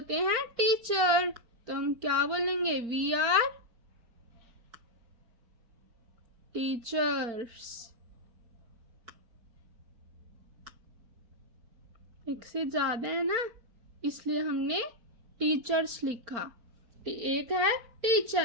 हैं टीचर, तो हम क्या बोलेंगे, वी आर टीचर्स। एक से ज्यादा है ना, इसलिए हमने टीचर्स लिखा। एक है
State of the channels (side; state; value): left; late; 4.3 ms